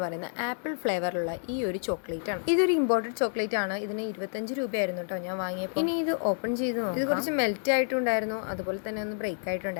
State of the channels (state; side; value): silent; right; 58 dB below the other